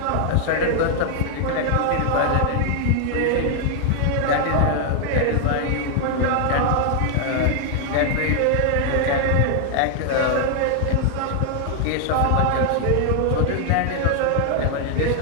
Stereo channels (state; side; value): different; both; correlation 0.00